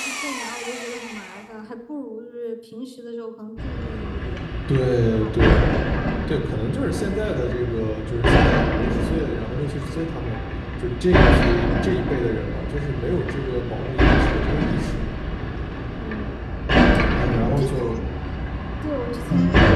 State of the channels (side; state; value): both; identical; correlation 1.00